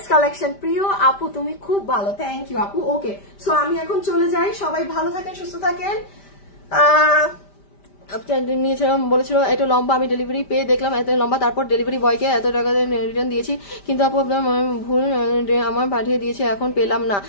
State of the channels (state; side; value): late; right; 5.1 ms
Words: কালেকশন প্রিয় আপু, তুমি খুব ভালো, থ্যাংক ইউ আপু। ওকে সো আমি এখন চলে যাই, সবাই ভালো থাকেন সুস্থ থাকেন। নিয়েছিলাম বলেছিল এটা লম্বা, আমি ডেলিভারি পেয়ে দেখলাম এত লম্বা, তারপর ডেলিভারি বয়কে এত টাকা রিটার্ন দিয়েছি, কিন্তু আপু আপনার ভুল আমার পাঠিয়ে দিয়েছে, এখন পেলাম না।